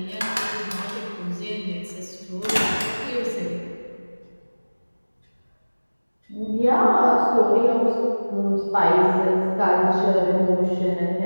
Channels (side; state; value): both; inverted; correlation -1.00